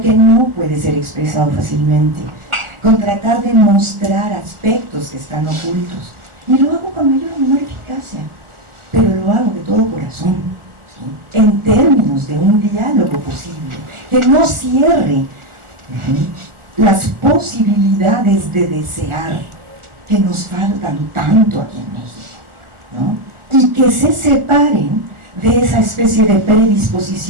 que no puede ser expresado fácilmente, con tratar de mostrar aspectos que están ocultos, y lo hago con mayor o menor eficacia, pero lo hago de todo corazón, ¿sí?, en términos de un diálogo posible, que no cierre las posibilidades de desear que nos faltan tanto aquí en México, ¿no?, y que se separen de esa especie de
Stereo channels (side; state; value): left; late; 1.4 ms